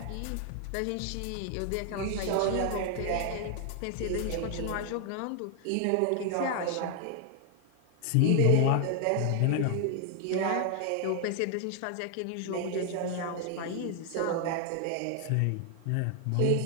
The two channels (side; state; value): both; different; correlation 0.00